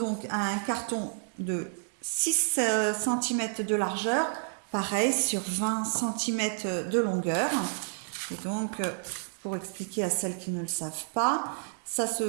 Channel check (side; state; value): left; silent; digital silence